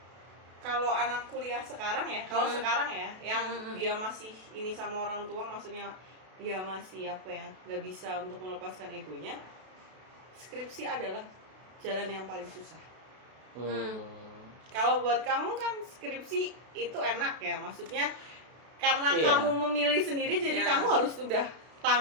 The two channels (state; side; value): late; left; 32 ms